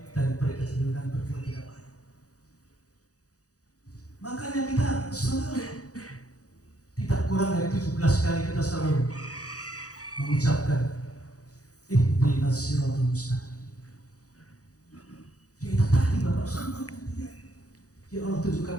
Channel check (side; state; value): right; late; 0.67 ms